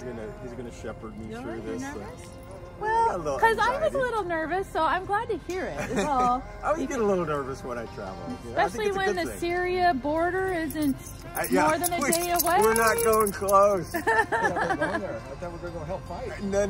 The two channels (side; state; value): both; identical; correlation 1.00